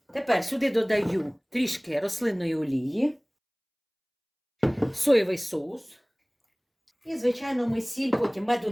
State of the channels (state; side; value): identical; both; correlation 1.00